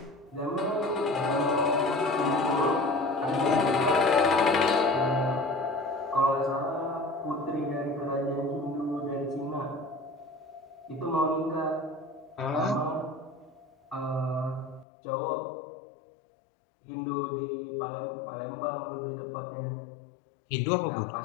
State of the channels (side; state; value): right; drops out; at 14.9 s